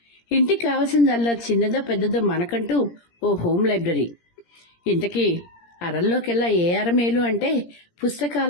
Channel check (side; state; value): right; late; 17 ms